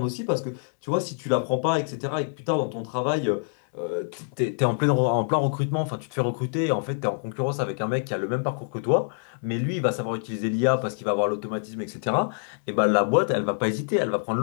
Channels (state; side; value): silent; right; 61 dB below the other